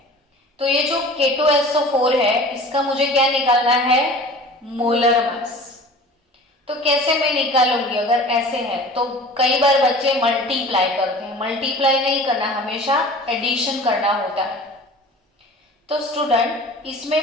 तो ये जो K2SO4 है इसका मुझे क्या निकालना है? Molar mass. तो कैसे मैं निकालूंगी? अगर ऐसे है तो कई बार बच्चे मल्टीप्लाई करते हैं। मल्टीप्लाई नहीं करना, हमेशा एडिशन करना होता है। तो स्टूडेंट,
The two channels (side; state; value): both; normal; correlation 0.42